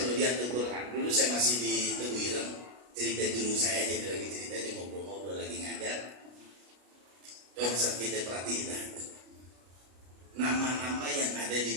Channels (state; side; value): late; left; 33 ms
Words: lihat Al-Quran, dulu saya masih di Teguh Ireng, cerita guru saya aja, lagi cerita aja, ngobrol-ngobrol lagi ngajar. Coba saat kita perhatiin, nama-nama yang ada di